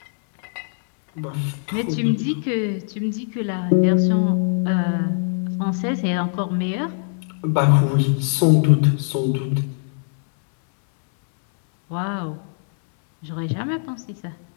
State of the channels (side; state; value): right; silent; 64 dB below the other